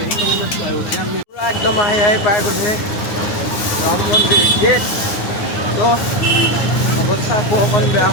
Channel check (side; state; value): right; late; 9.6 ms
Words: পূৰা একদম আহি পাই গ'লহি ৰাম মন্দিৰ গেট তো অৱস্থা আকৌ অকণ বেয়া